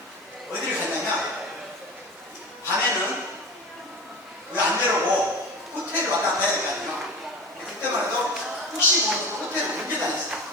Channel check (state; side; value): normal; both; correlation 0.32